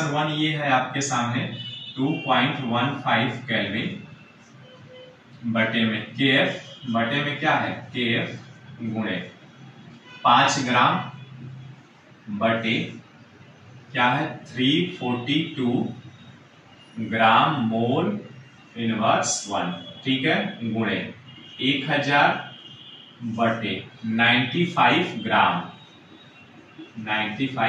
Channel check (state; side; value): identical; both; correlation 1.00